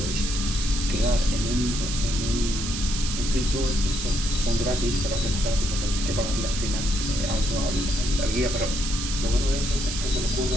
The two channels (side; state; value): right; noise; hiss, 5 dB below the sound